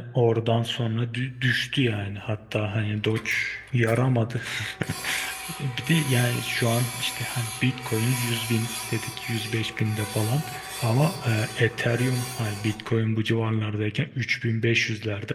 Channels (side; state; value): both; identical; correlation 1.00